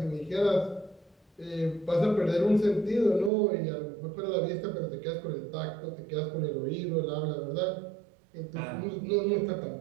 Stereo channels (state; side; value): drops out; left; at 3.3 s